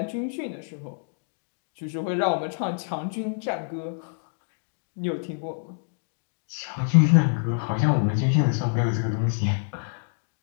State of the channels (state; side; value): silent; right; digital silence